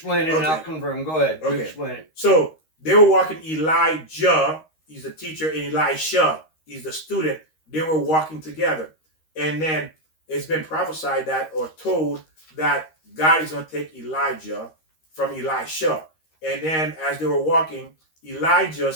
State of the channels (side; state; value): right; late; 13 ms